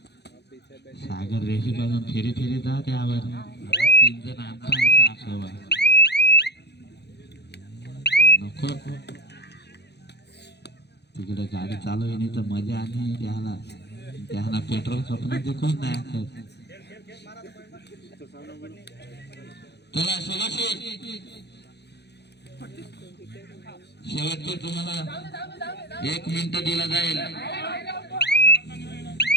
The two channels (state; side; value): late; right; 0.49 ms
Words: सागर रेशी पासून फेरी फेरी जा त्यावर 3 जण आणता असं नको. तिकडे गाडी चालू आहे नाही तर मजा आणि त्याला पेट्रोल स्वप्न देखून नाही. चला सोलाशी शेवटचे तुम्हाला 1 मिनिट दिला जाईल.